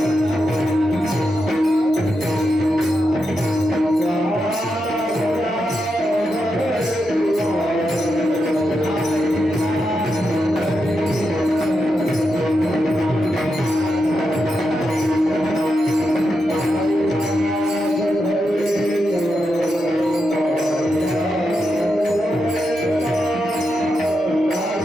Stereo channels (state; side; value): normal; both; correlation 0.86